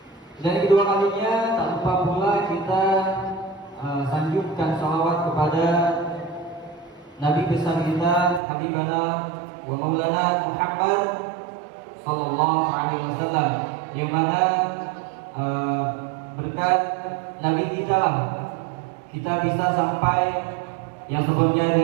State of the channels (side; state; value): left; drops out; at 8.4 s